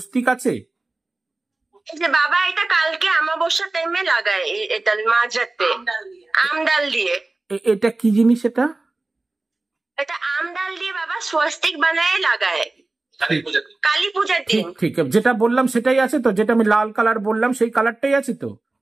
আছে? এই যে বাবা, এটা কালকে অমাবস্যা টাইমে লাগায়, এটা মাঝরাতে আমডাল দিয়ে। এটা কি জিনিস? এটা আমডাল দিয়ে বাবা স্বস্তিক বানায় লাগায় কালী পূজার দিন। ঠিক, যেটা বললাম সেটাই আছে তো? যেটা আমি লাল কালার বললাম সেই কালারটাই আছে তো?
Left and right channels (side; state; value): left; quieter; 3.1 dB